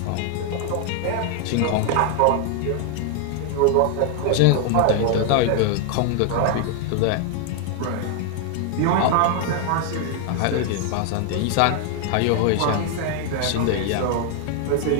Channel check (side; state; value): both; different; correlation 0.00